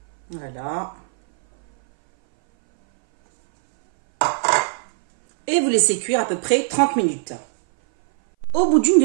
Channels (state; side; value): silent; left; 60 dB below the other